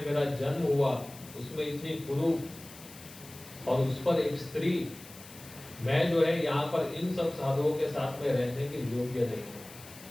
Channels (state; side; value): noise; left; hiss, 18 dB below the sound